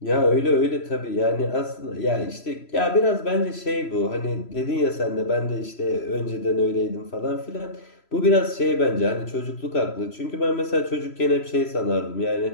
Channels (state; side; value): late; right; 3.0 ms